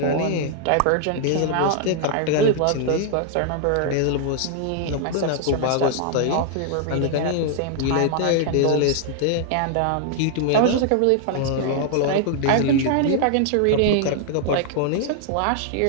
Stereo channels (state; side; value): different; both; correlation -0.01